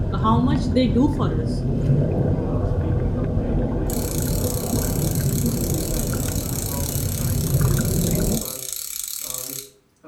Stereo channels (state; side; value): identical; both; correlation 1.00